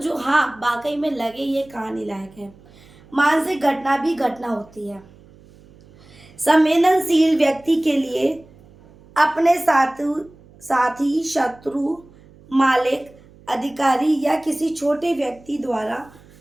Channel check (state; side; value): noise; right; hum, 25 dB below the sound